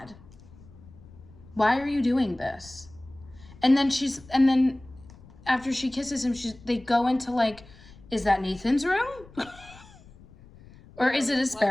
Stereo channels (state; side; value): noise; left; rumble, 22 dB below the sound